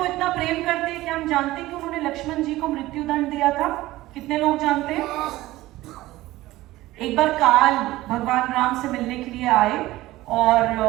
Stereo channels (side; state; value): left; quieter; 17.3 dB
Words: इतना प्रेम करते हैं, क्या हम जानते हैं कि उन्होंने लक्ष्मण जी को मृत्यु दंड दिया था? कितने लोग जानते हैं? एक बार काल भगवान राम से मिलने के लिए आए और